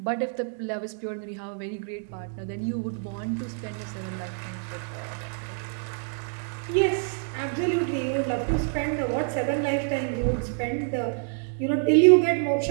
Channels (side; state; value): left; silent; 56 dB below the other